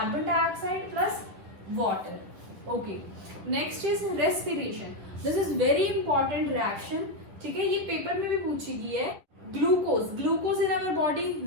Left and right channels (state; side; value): late; left; 10 ms